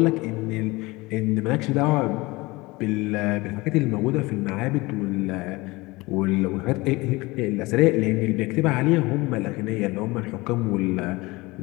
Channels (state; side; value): quieter; right; 22.4 dB